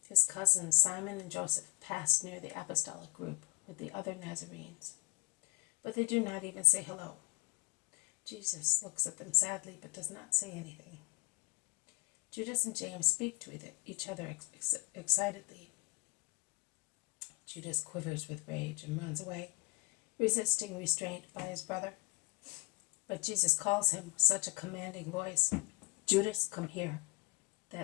his cousins Simon and Joseph pass near the apostolic group with the other Nazarenes, but they do not even say hello. Jesus looks at them sadly but does not say anything. Judas and James speak to each other excitedly. Judas quivers with rage and runs away, resisting restraint by his brother. But Jesus calls him with such a commanding voice, "Judas, come here,"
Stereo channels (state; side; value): quieter; right; 25.9 dB